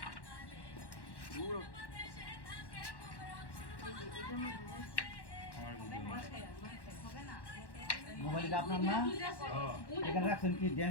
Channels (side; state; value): right; late; 1.1 ms